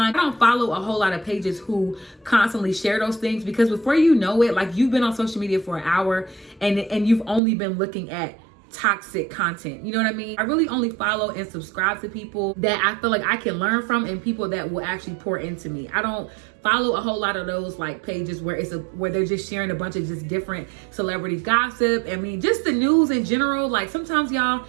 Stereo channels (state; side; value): drops out; left; at 7.4 s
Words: I don't follow a whole lot of pages who constantly share those things because before you know it, like you've been on social media for an hour and you've only been looking at toxic content. You know what I mean? I really only follow and subscribe to people that I feel like I can learn from and people that will actually pour into me. I don't follow a whole lot of those like pages where where they're just sharing a bunch of just different celebrity gossip. I mean, just the news in general. Like sometimes, y'all,